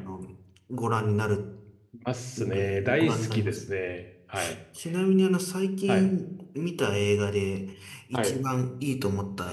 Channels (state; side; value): identical; both; correlation 1.00